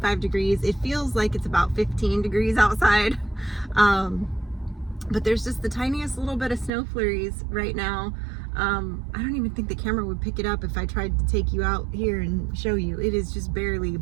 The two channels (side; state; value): left; drops out; at 6.7 s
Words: degrees. It feels like it's about 15 degrees outside. But there's just the tiniest little bit of snow flurries right now. I don't even think the camera would pick it up if I tried to take you out here and show you. It is just barely,